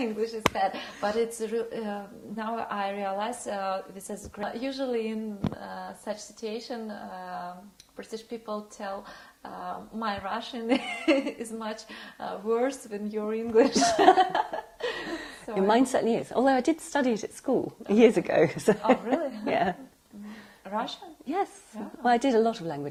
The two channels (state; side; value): identical; both; correlation 1.00